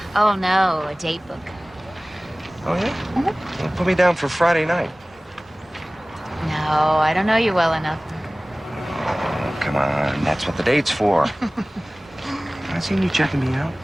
Oh, no, a date book. Oh, yeah? Well, put me down for Friday night. No, I don't know you well enough. Oh, come on. That's what the date's for. I seen you checking me out.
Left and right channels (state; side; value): normal; both; correlation 0.98